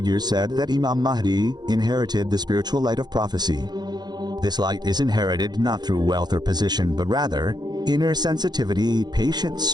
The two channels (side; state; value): left; late; 0.20 ms